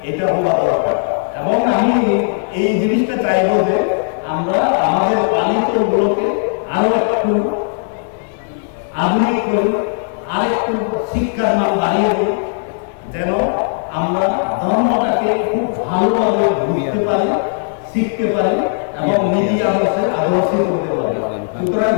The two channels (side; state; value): right; silent; 64 dB below the other